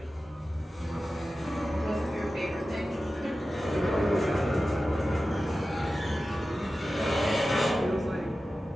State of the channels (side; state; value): both; normal; correlation 0.94